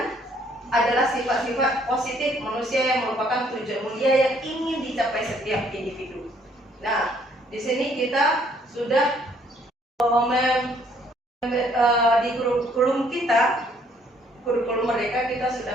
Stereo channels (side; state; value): both; normal; correlation 0.64